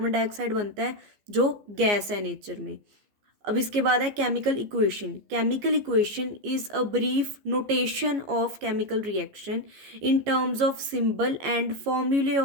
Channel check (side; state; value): left; late; 15 ms